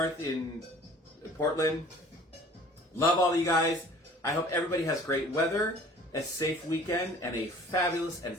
in Portland. Love all of you guys. I hope everybody has great weather, a safe weekend, and a fabulous and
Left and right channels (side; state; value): both; normal; correlation 0.49